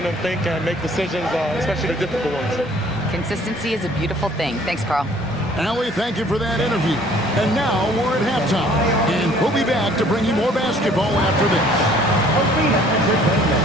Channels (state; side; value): normal; both; correlation 0.56